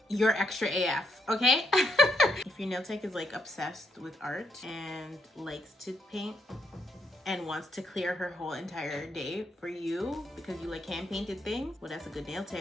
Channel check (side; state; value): both; normal; correlation 0.77